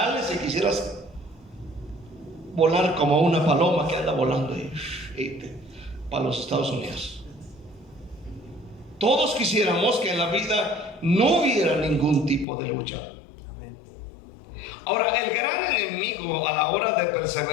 y quisieras volar como una paloma que anda volando para los Estados Unidos. Todos quisiéramos que en la vida no hubiera ningún tipo de lucha. Ahora, el gran enemigo a la hora de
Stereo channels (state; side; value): drops out; right; at 12.5 s